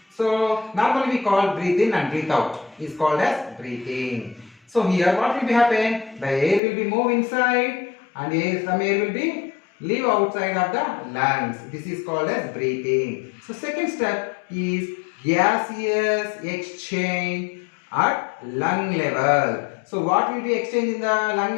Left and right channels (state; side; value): drops out; right; at 6.6 s